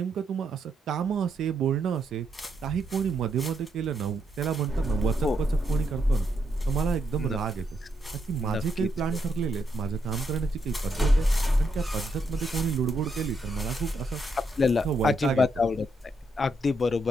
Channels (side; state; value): both; normal; correlation 0.79